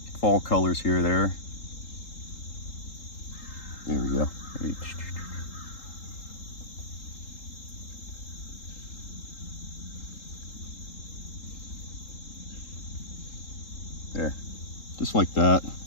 fall colors here, there. There we go. There, just like that.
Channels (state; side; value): late; right; 3.8 ms